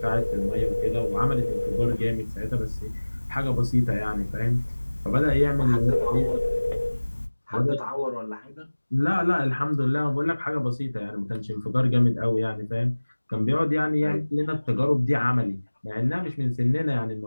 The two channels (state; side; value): inverted; both; correlation -1.00